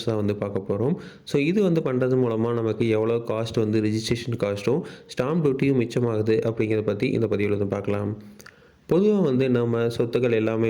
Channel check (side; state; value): both; identical; correlation 1.00